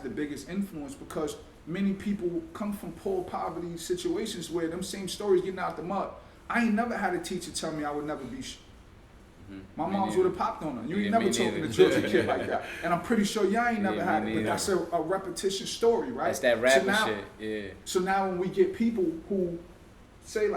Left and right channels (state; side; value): identical; both; correlation 1.00